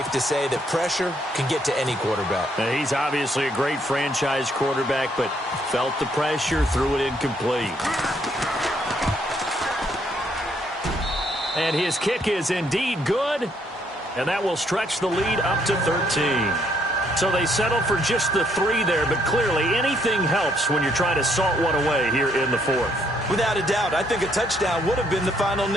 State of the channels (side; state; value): both; normal; correlation 0.70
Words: to say that pressure can get to any quarterback. He's obviously a great franchise quarterback, but felt the pressure, threw it incomplete. And his kick is indeed good, and that will stretch the lead up to 13. So they settle for just the 3 there, but clearly anything helps when you're trying to salt one away here in the 4th. Without a doubt, I think a touchdown would have been the final